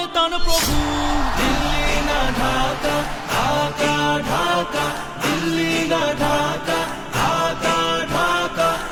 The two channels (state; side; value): identical; both; correlation 1.00